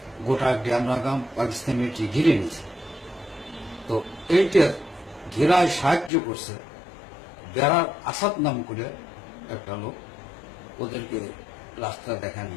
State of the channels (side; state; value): right; drops out; at 6.1 s